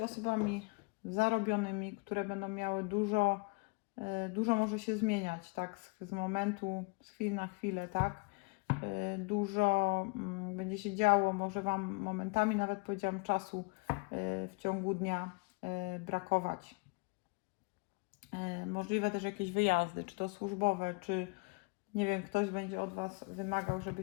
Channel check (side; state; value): right; quieter; 29.8 dB